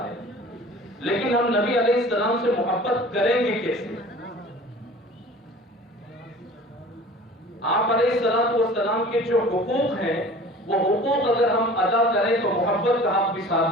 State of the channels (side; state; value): both; normal; correlation 0.44